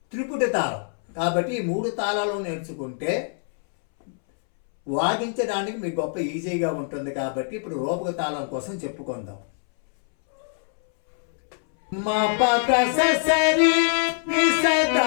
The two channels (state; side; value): silent; right; 63 dB below the other